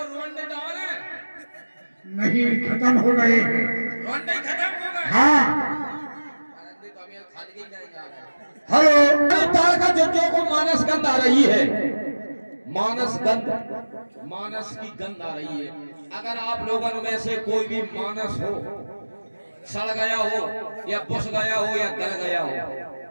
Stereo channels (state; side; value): inverted; both; correlation -1.00